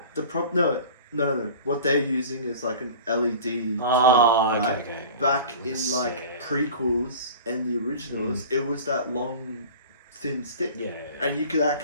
No. What they're using is like an LED. Oh, twig, right? okay. Back Yeah, in like sick. prequels and the originals, it was that long, thin stick. Yeah. And you could You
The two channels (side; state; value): both; inverted; correlation -0.40